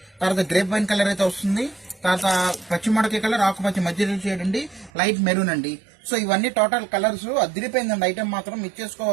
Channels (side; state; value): left; drops out; at 4.9 s